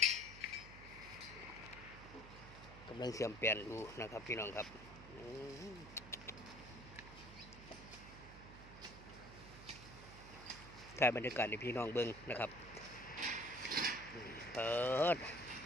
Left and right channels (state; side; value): noise; right; hum, 15 dB below the sound